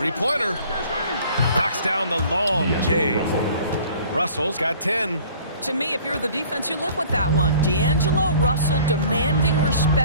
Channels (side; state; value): both; inverted; correlation -0.51